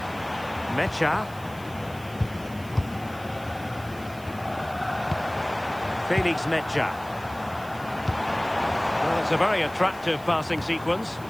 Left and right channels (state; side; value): noise; right; hiss, 21 dB below the sound